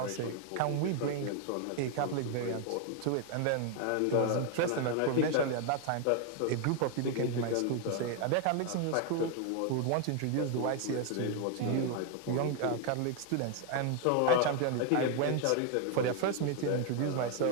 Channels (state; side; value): different; both; correlation 0.00